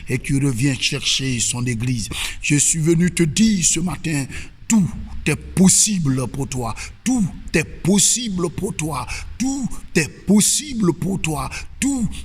et qui revient chercher son église. Je suis venu te dire ce matin, tout est possible pour toi. Tout est possible pour toi. Tout est possible pour toi. Tout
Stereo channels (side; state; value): both; identical; correlation 1.00